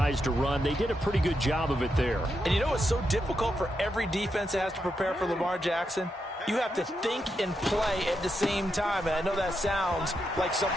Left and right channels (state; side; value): normal; both; correlation 0.84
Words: to run. They did a pretty good job of it there. And you know what's so difficult for every defense that has to prepare for Lamar Jackson? You have to think and play at the same time. And I know that sounds like